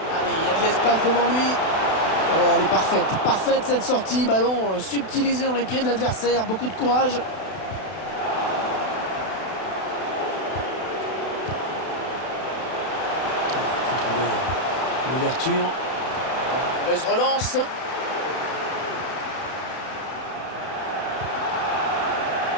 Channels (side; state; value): right; late; 32 ms